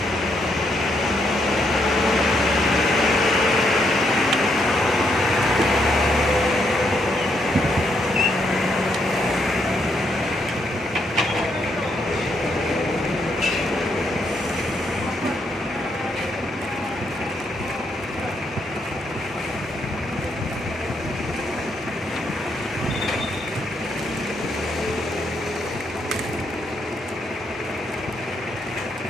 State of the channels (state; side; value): normal; both; correlation 0.76